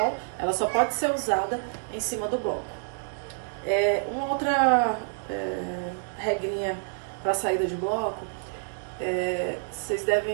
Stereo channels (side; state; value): left; silent; digital silence